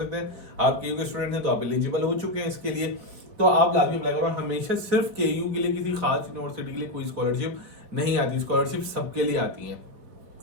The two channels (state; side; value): late; left; 4.2 ms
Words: हैं। आप केयू के स्टूडेंट हैं तो आप एलिजिबल हो चुके हैं इसके लिए, तो आप लाजमी अप्लाई करो। हमेशा सिर्फ केयू के लिए किसी खास यूनिवर्सिटी के लिए कोई स्कॉलरशिप नहीं आती, स्कॉलरशिप सबके लिए आती है,